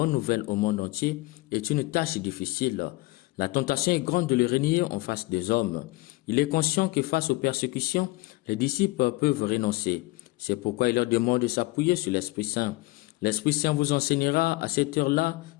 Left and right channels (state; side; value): quieter; right; 21.3 dB